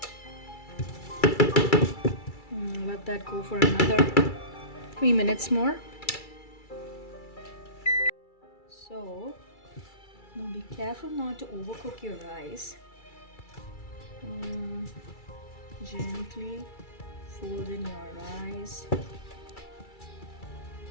Let that go for another 3 minutes more. So now be careful not to overcook your rice. Gently fold in your rice.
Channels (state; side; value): late; right; 2.3 ms